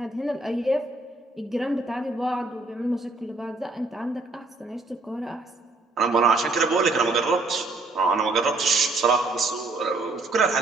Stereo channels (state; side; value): quieter; left; 3.3 dB